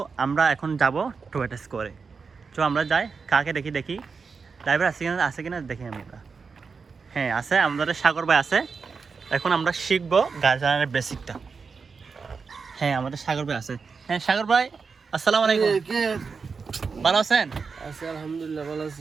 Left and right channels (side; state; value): left; quieter; 5.1 dB